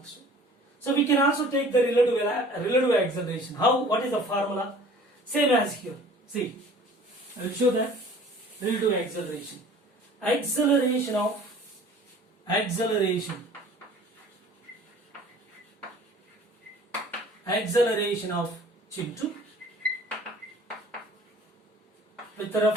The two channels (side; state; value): both; normal; correlation 0.49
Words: So we can also take the relative acceleration. How? What is the formula? Same as here. See, I will show that relative acceleration. Acceleration of Chintu with